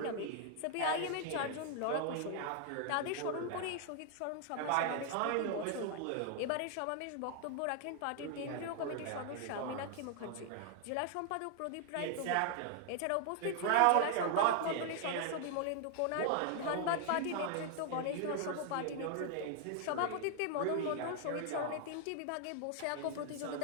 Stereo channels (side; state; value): both; different; correlation 0.00